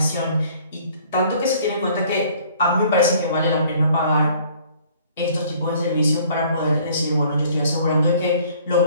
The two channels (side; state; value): both; inverted; correlation -0.56